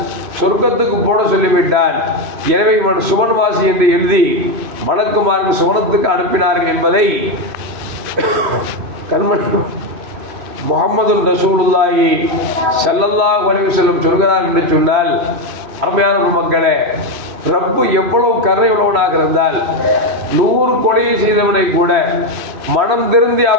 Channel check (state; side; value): late; left; 3.1 ms